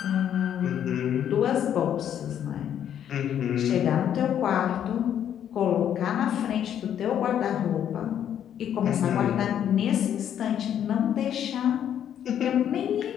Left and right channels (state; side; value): quieter; right; 9.7 dB